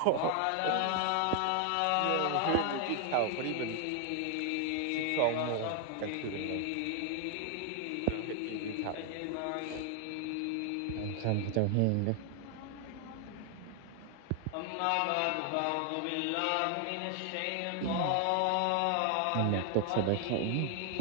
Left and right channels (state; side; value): different; both; correlation 0.00